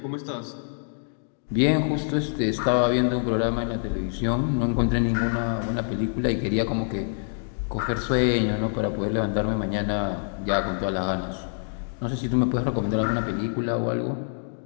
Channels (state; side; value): silent; right; digital silence